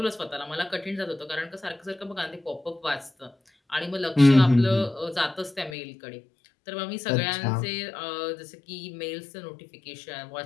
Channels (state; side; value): drops out; right; at 5.8 s